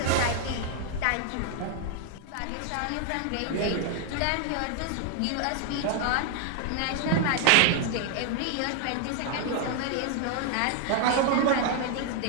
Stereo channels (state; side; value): different; both; correlation 0.00